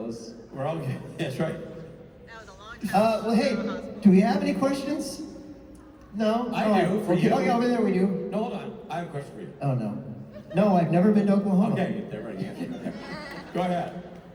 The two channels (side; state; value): both; identical; correlation 1.00